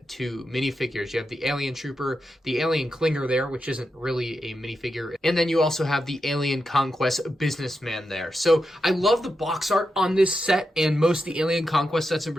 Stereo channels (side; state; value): both; normal; correlation 0.87